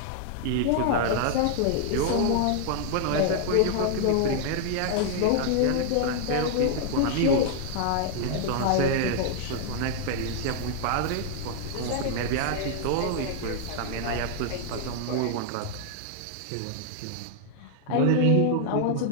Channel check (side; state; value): both; different; correlation 0.00